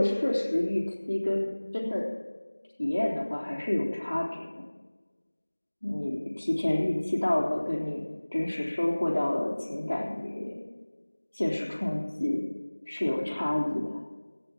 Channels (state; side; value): inverted; both; correlation -1.00